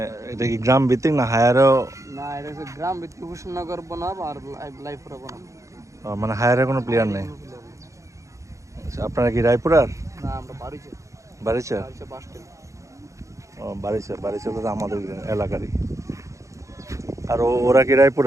এটা কি গ্রাম ভিত্তিক না হায়ারও? না, এটা হচ্ছে গ্রাম ভিত্তিক মুর্শিদনগর বনাম আর রায়পুরা বনাম। মানে হায়ারে কোনো প্লেয়ার নেই। আচ্ছা, আপনারা কি রায়পুরার? না, আমরা বাড়িতে বারিচা? Bus stand. ও বারিচা, বারিচা তো আমাদের এলাকারই। আর ওরা কি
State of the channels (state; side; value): late; left; 0.15 ms